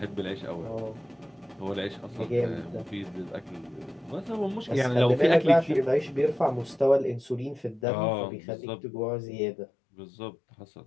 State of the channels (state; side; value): drops out; right; at 7.8 s